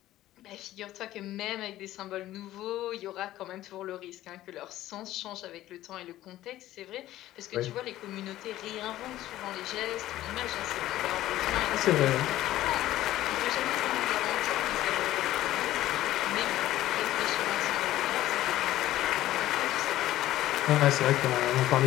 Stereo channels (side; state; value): right; quieter; 14.6 dB